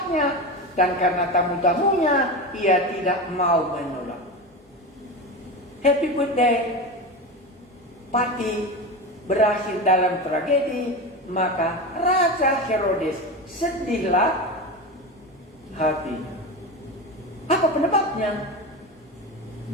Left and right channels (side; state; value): both; normal; correlation 0.23